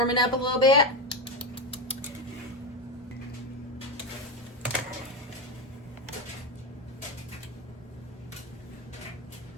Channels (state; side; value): normal; both; correlation 0.13